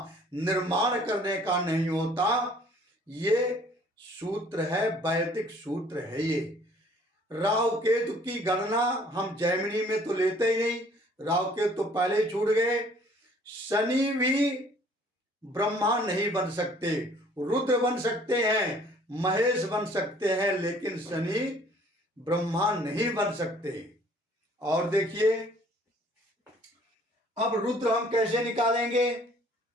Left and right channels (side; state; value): both; normal; correlation 0.56